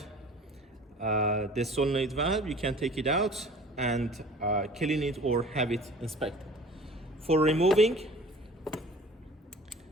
the solenoid valve, you can take it out and clean it or have it inspected. For removing,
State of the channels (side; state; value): both; normal; correlation 0.45